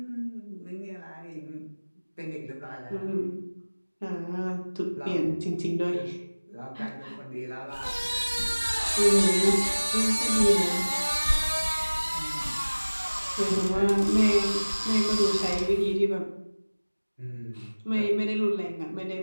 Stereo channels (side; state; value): both; inverted; correlation -1.00